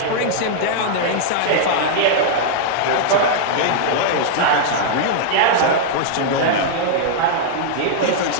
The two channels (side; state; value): both; different; correlation -0.01